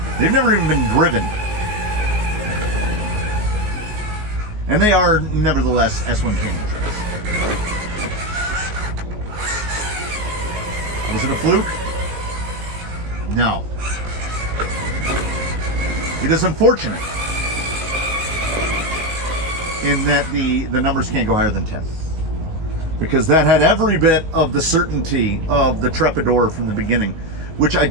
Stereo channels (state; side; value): late; left; 19 ms